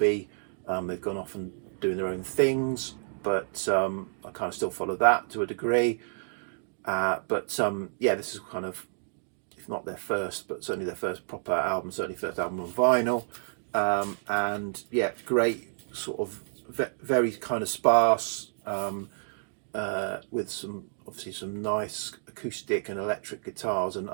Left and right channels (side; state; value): left; silent; digital silence